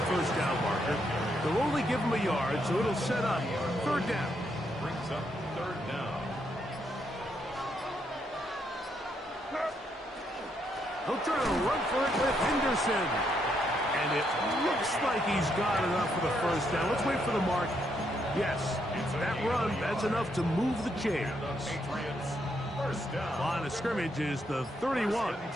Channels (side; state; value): both; normal; correlation 0.77